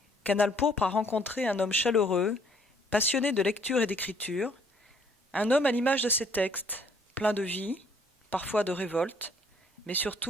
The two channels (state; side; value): normal; both; correlation 0.62